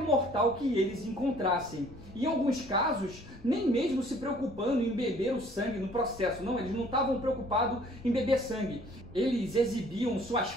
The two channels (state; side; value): noise; left; rumble, 21 dB below the sound